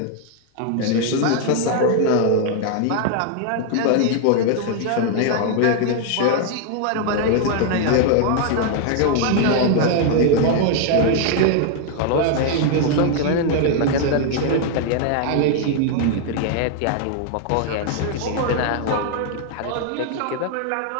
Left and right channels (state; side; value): different; both; correlation 0.00